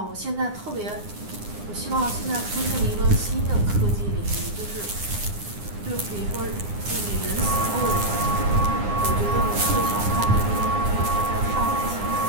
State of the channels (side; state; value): left; late; 9.8 ms